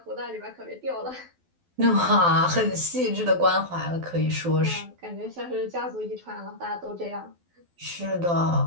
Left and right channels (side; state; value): left; late; 12 ms